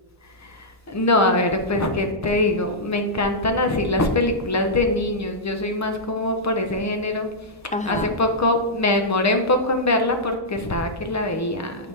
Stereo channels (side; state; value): both; normal; correlation -0.10